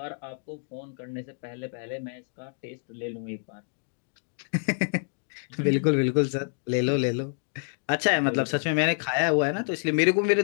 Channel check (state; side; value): silent; right; digital silence